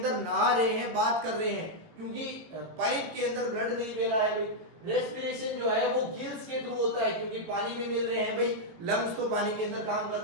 नहा रहे हैं, बात कर रहे हैं, क्योंकि पाइप के अंदर ब्लड नहीं बह रहा है भाई। रेस्पिरेशन जो है वो गिल्स के थ्रू होता है, क्योंकि पानी में मिल रहे हैं भाई। लंग्स तो पानी के अंदर काम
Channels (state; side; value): late; left; 18 ms